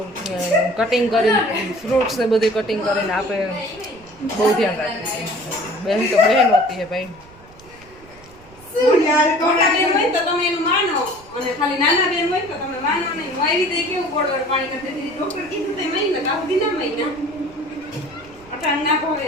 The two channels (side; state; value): right; noise; rumble, 25 dB below the sound